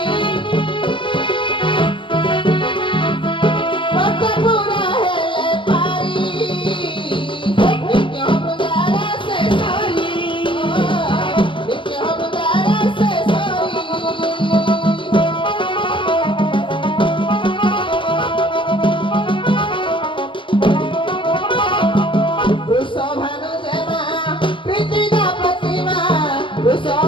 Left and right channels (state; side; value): late; right; 0.24 ms